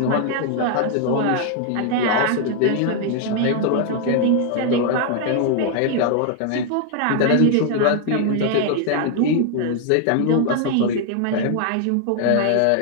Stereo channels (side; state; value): both; different; correlation 0.00